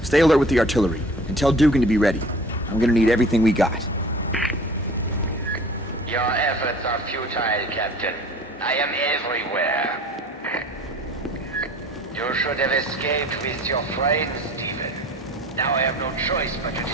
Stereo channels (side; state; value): both; normal; correlation 0.45